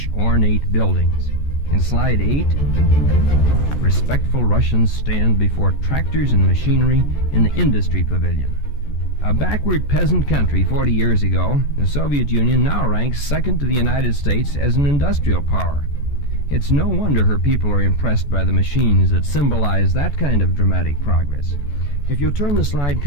ornate buildings. In slide 8, respectful Russians stand before tractors and machinery in the industry pavilion. A backward peasant country 40 years ago, the Soviet Union now ranks second to the United States as an industrial power. It's no wonder her people are impressed by the machines that symbolize that kind of dramatic progress. If you'll turn the slide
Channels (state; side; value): late; right; 14 ms